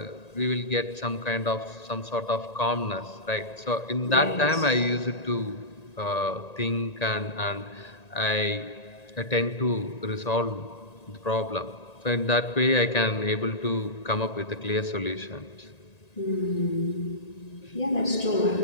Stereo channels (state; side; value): late; right; 1.9 ms